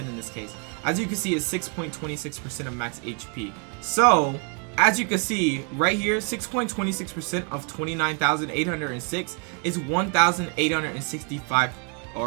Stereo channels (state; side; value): quieter; left; 34.0 dB